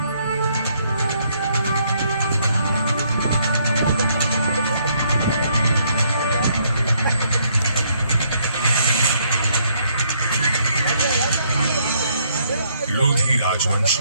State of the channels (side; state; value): both; inverted; correlation -0.70